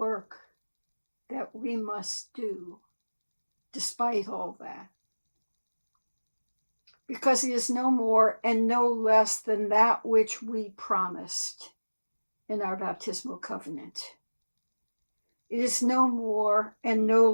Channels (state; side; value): inverted; both; correlation -1.00